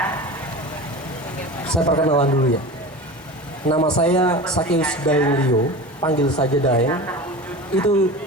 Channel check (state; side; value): normal; both; correlation 0.32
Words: Saya perkenalan dulu ya. Nama saya Sakeus Daeng Leo, panggil saja Daeng. Itu